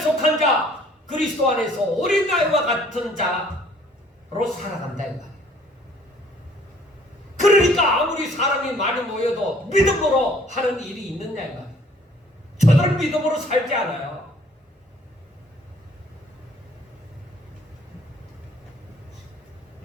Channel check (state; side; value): normal; both; correlation 0.58